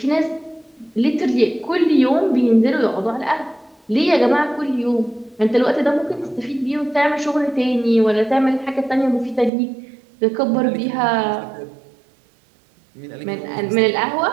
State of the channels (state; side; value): drops out; left; at 9.5 s